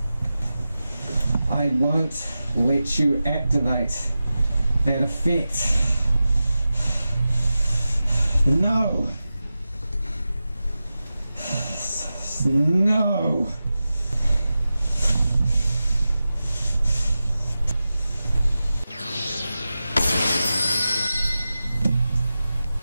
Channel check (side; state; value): both; inverted; correlation -0.94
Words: I won't let you activate that effect. No, no.